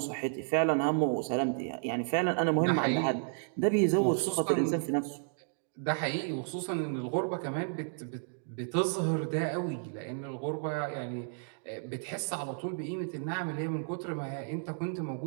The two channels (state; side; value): silent; left; digital silence